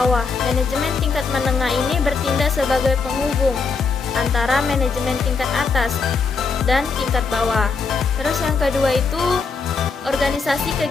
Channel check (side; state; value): right; quieter; 4.8 dB